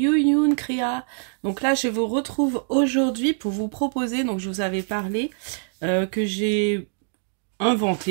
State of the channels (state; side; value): silent; left; digital silence